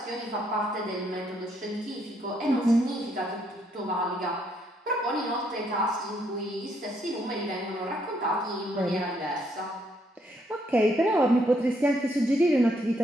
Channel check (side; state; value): both; normal; correlation 0.73